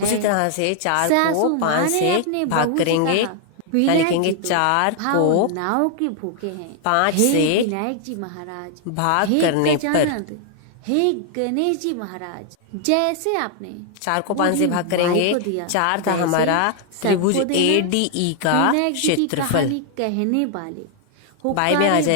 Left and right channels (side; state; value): both; different; correlation 0.00